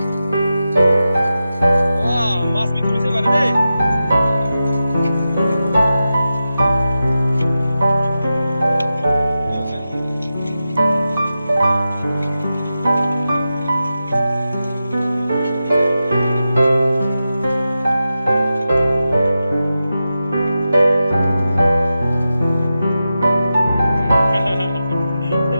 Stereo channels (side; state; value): both; inverted; correlation -0.91